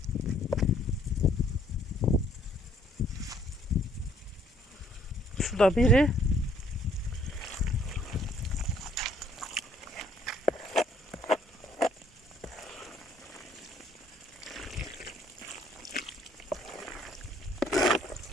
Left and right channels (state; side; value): normal; both; correlation 0.63